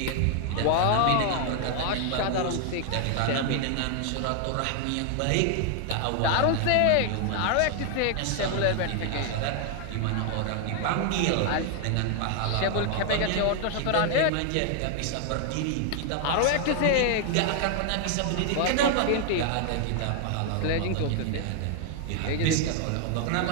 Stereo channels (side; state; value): both; different; correlation 0.00